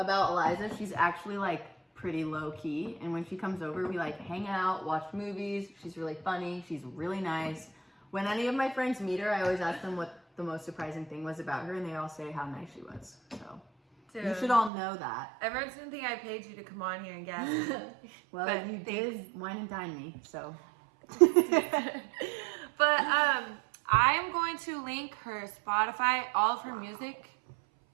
Eliza, she's actually like pretty low key, and when she comes over, we like hang out, watch movies. She's really funny. She's really nice. When any of my friends meet her, I always ask them what the most surprising thing was about her, and they all say how nice she was. So Dude, you should all know that. Everyone's gonna think I paid you to come on here and gas me. Well, But you thanks. did wine and dine me, so. But I'm going to link her Spotify, all of her music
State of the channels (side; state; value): left; drops out; at 14.7 s